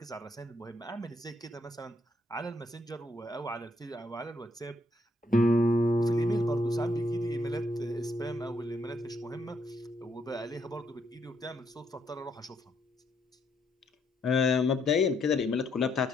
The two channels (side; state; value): both; normal; correlation 0.74